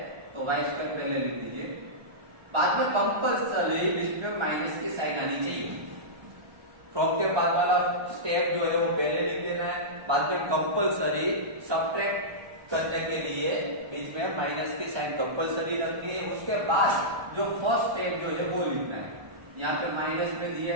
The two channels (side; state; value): left; late; 1.3 ms